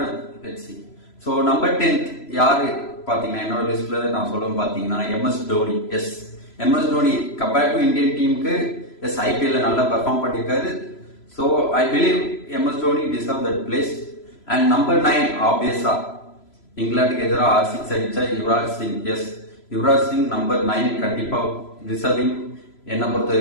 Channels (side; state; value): right; late; 3.0 ms